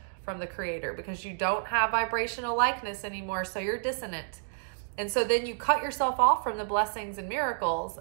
from the creator because you don't have vibrational likeness anymore. So you're dissonant. And so then you cut yourself off from the blessings and miracles,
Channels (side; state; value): left; silent; digital silence